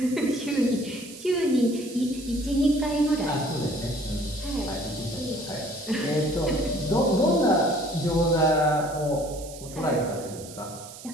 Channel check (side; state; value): right; noise; hiss, 16 dB below the sound